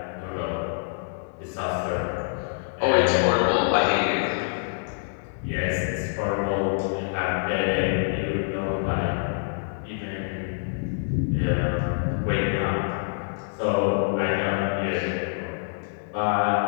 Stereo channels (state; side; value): silent; right; digital silence